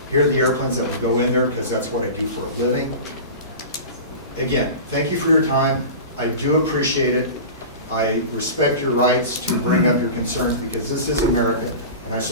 Here are the airplanes that will go in there because that's what I do for a living. Again, thank you for your time. I do appreciate it. I respect your rights to bring up your concerns because this is America and I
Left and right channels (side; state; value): both; inverted; correlation -0.32